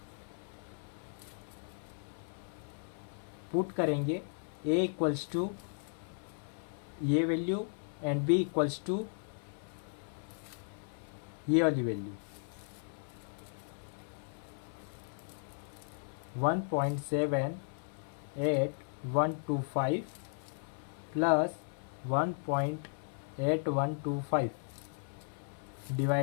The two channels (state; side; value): silent; right; 54 dB below the other